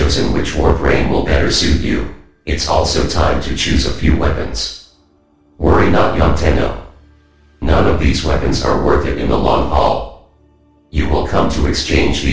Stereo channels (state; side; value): identical; both; correlation 1.00